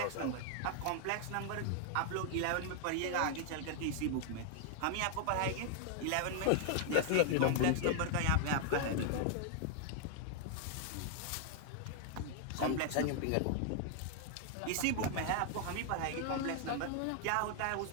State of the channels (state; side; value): different; both; correlation 0.00